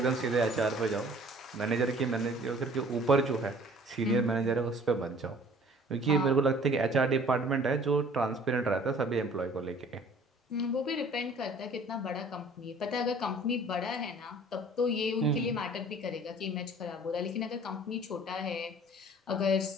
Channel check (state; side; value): normal; both; correlation 0.52